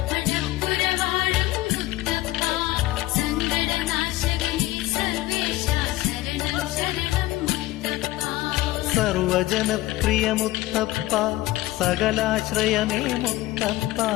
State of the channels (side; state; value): right; quieter; 17.3 dB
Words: സർവജനപ്രിയ മുത്തപ്പ സകലാശ്രയമേ മുത്തപ്പ